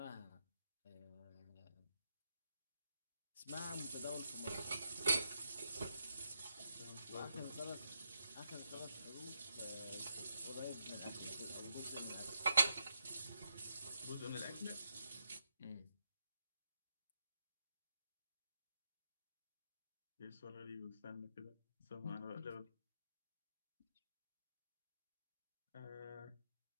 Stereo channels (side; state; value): both; inverted; correlation -0.83